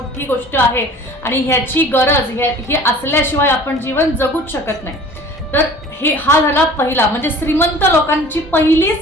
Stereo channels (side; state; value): both; normal; correlation 0.45